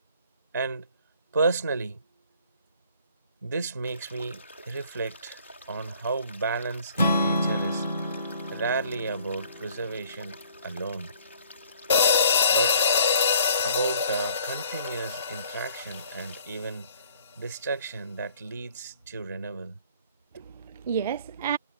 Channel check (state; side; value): inverted; both; correlation -0.58